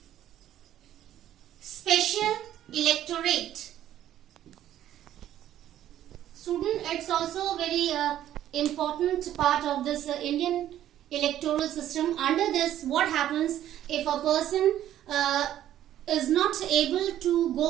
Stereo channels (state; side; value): quieter; left; 11.9 dB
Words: special electorate. Student, it's also a very important part of this Indian electoral system. Under this, what happens if a person is not able to